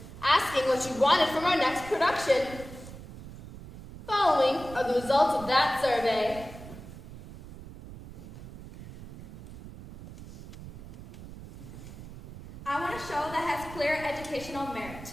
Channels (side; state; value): right; noise; rumble, 14 dB below the sound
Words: asking what you wanted from our next production. Following are the results of that survey. I want a show that has clear educational merit.